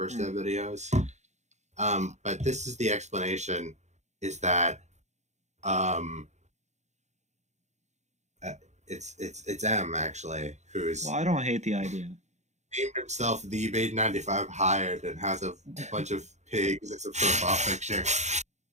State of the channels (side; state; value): left; late; 0.33 ms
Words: dev videos. But this is the explanation: is that it's M actually who's Well, I don't hate the idea. named himself the Beta 95 Hired and has a bunch of pigs as a profile picture.